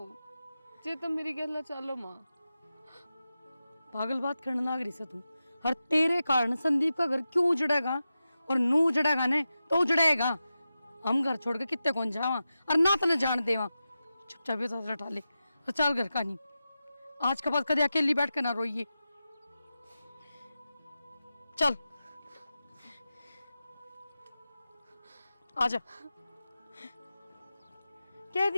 जे तुम मेरी गल चालो माँ। पागल बात करने लाग रही से तू, हर तेरे कारण संदीप का घर क्यों उजड़ेगा, और नू उजड़ेगा ने तो उजड़ेगा। हम घर छोड़ के कितने कौन जावा और ना तो जान देवा। चुपचाप ये उठा ले और चल घर का नहीं, आज के बाद कदे अकेली बैठ के ना रोइए। चल आजा, कह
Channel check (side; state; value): both; inverted; correlation -0.92